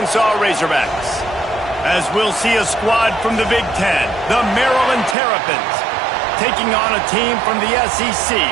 Razorbacks. As we'll see a squad from the Big Ten, the Maryland Terrapins, taking on a team from the SEC,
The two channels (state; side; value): drops out; left; at 5.2 s